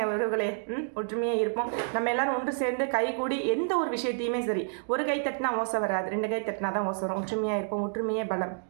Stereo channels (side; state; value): left; silent; digital silence